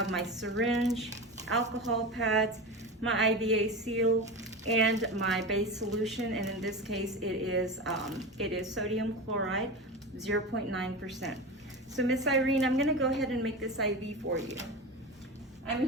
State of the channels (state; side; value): normal; both; correlation 0.25